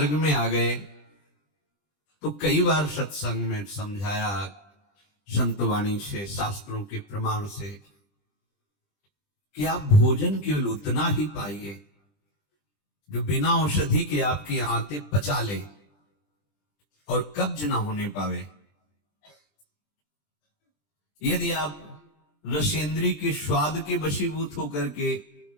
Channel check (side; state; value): right; late; 20 ms